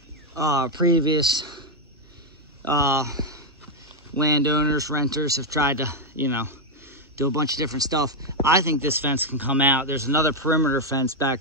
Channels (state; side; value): normal; both; correlation 0.02